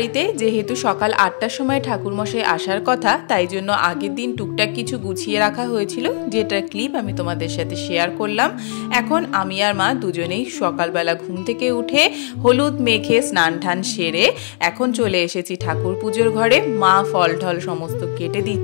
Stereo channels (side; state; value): right; silent; digital silence